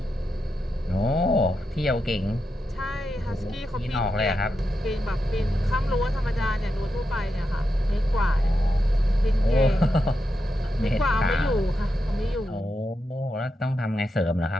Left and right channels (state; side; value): normal; both; correlation 0.87